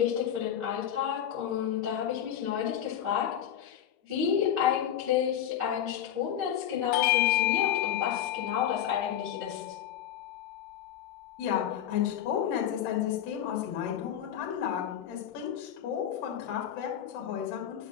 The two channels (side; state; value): right; quieter; 10.1 dB